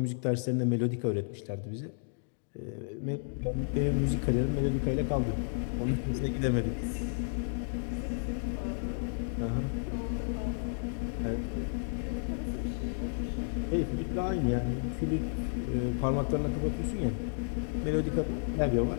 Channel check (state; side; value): silent; right; digital silence